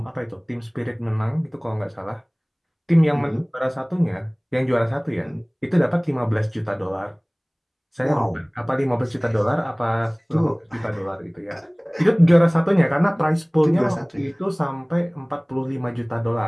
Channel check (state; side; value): identical; both; correlation 1.00